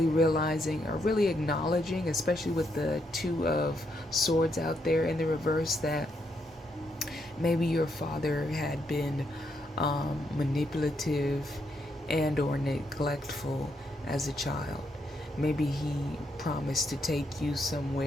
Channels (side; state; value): both; normal; correlation 0.78